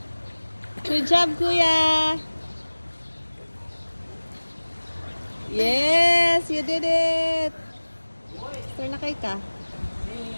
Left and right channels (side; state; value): both; inverted; correlation -1.00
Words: Good job, Kuya. Yes, you did it. Turn na kay ka.